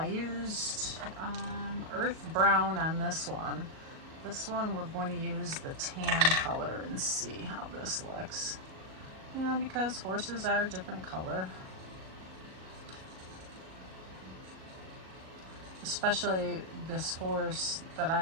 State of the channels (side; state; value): left; late; 38 ms